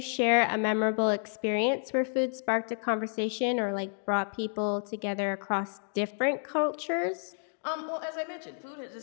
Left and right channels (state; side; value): silent; right; 58 dB below the other